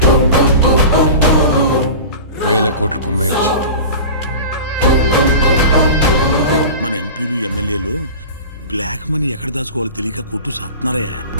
1000 కోట్లు కుమ్మేయచ్చు. మన ఎంపీలు ఎమ్మెల్యేలు బ్లాక్ మనీ ఎక్కడ దాచుకోవాలో తెలియక కొట్టు సాపుతున్నారే.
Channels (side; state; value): both; inverted; correlation -0.34